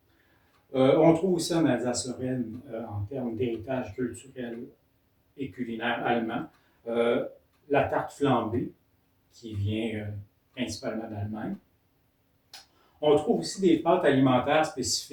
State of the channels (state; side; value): identical; both; correlation 1.00